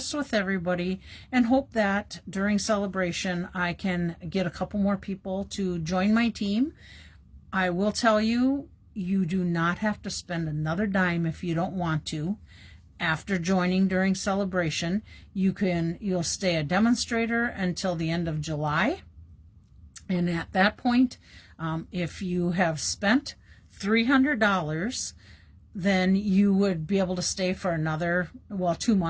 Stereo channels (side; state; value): both; identical; correlation 1.00